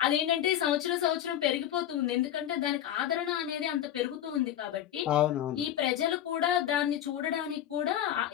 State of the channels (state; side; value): quieter; right; 11.2 dB